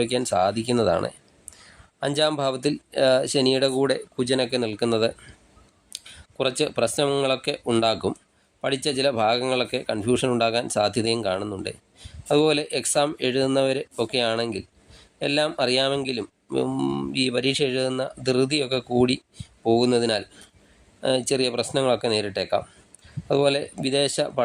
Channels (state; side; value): identical; both; correlation 1.00